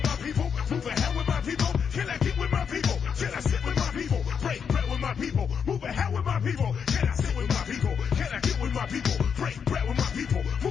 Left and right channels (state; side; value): quieter; right; 6.9 dB